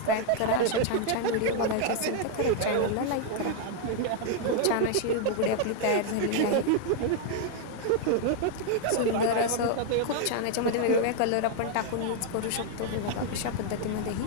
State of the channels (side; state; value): both; different; correlation 0.00